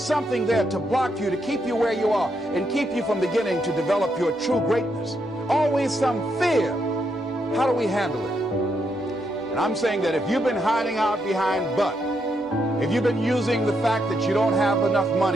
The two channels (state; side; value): normal; both; correlation 0.79